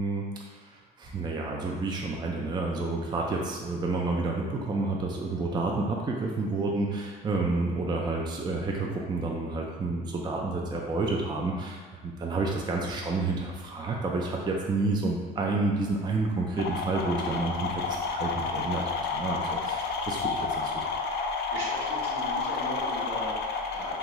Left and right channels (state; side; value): normal; both; correlation 0.44